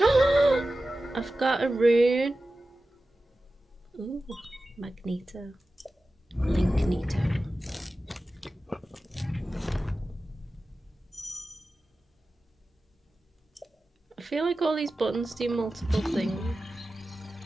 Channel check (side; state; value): both; normal; correlation 0.94